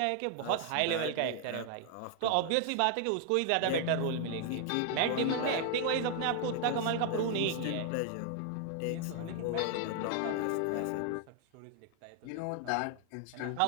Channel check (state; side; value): different; both; correlation 0.00